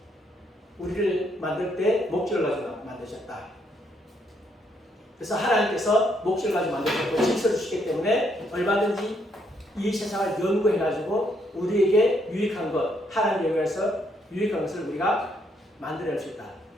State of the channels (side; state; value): both; normal; correlation 0.73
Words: 우리를 만들 때 목적을 가지고 만드셨다. 그래서 하나님께서 목적을 가지고 만드셨고 질서를 주시기 때문에 얼마든지 이 세상을 연구해가지고 우리에게 유익한 것, 하나님 영역에서 유익한 것을 우리가 만들어낼 수 있다.